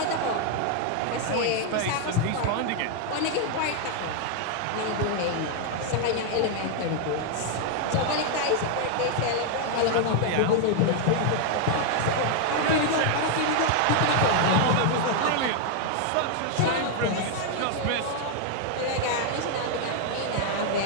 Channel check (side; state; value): both; different; correlation 0.00